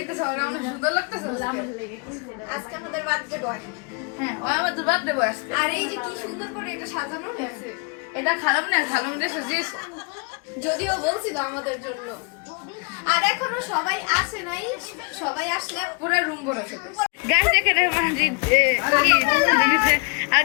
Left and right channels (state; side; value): quieter; right; 32.5 dB